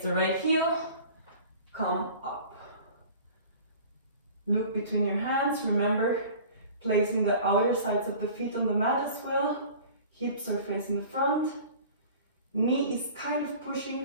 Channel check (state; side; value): inverted; both; correlation -0.43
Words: the right heel, come up. Look between your hands, remember placing the outer sides of the feet on the mat as well. Hips are facing the front. Knee is kind of